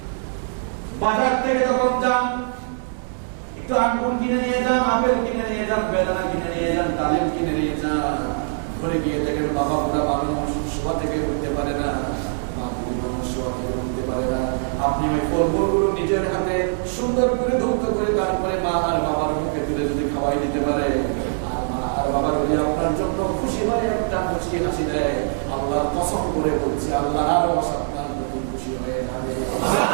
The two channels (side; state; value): left; silent; digital silence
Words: বাজার থেকে যখন যান, একটু আঙ্গুর কিনে নিয়ে যান, আপেল কিনে নিয়ে যান, বেদানা কিনে নিয়ে যান, ডালিম কিনে নিয়ে যান। ঘরে গিয়ে দেখেন বাবা বুড়া মানুষ, শোয়া থেকে উঠতে পারে না, মা বুড়ি মানুষ শোয়া থেকে উঠতে পারে না। আপনি ওই ফলগুলো নিজের হাতে সুন্দর করে ধৌত করে তারপরে মা আর বাবার মুখে তুলে যদি খাওয়াই দিতে পারে, আর মা আর বাবা যদি আপনার জন্য খুশি হয়ে একটা মুচকি হাসি দেয়, আল্লাহর কসম করে বলছি আল্লাহর আরো আপনার প্রতি খুশি হয়ে যাবে।